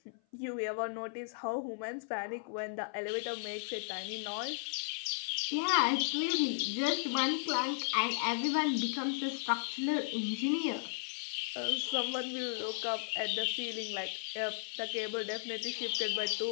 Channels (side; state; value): right; silent; 54 dB below the other